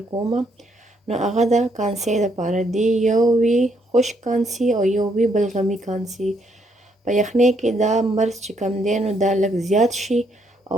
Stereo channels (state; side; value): normal; both; correlation 0.73